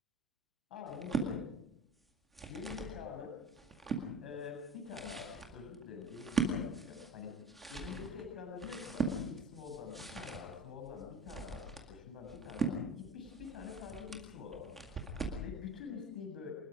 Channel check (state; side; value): normal; both; correlation 0.35